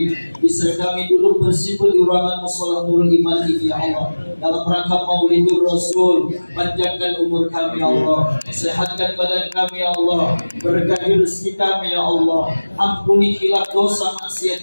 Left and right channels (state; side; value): inverted; both; correlation -1.00